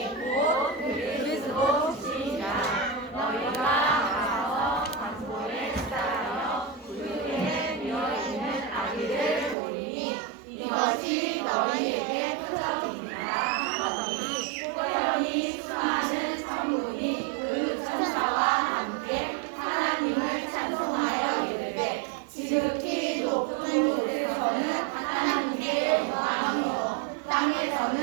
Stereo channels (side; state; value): left; drops out; at 9.6 s